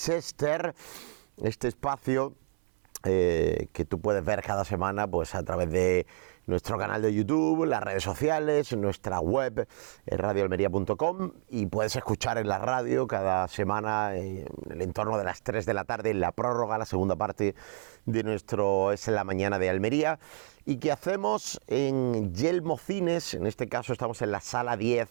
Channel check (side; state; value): left; silent; 58 dB below the other